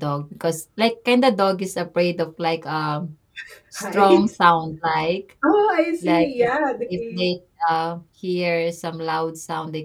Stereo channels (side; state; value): both; identical; correlation 1.00